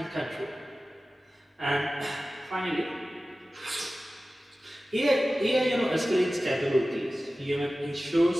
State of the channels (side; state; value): both; normal; correlation 0.96